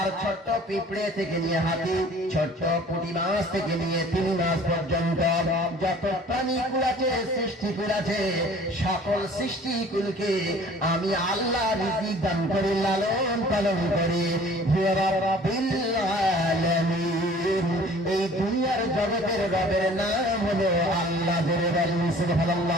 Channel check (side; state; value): both; normal; correlation 0.49